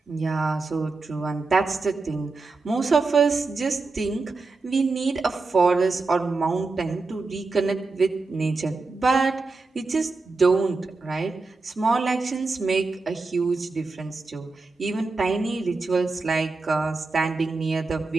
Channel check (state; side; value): quieter; left; 3.8 dB